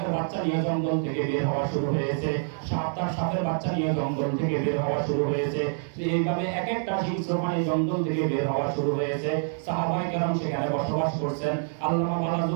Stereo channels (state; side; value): silent; left; 59 dB below the other